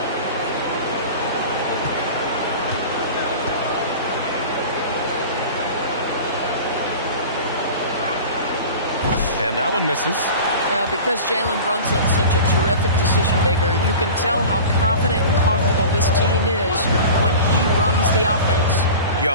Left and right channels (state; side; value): inverted; both; correlation -0.36